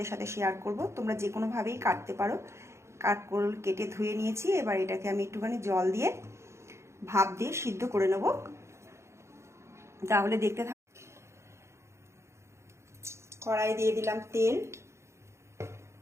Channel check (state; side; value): late; left; 0.13 ms